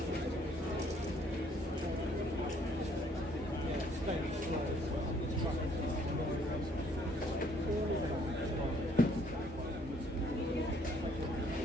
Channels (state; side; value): normal; both; correlation 0.64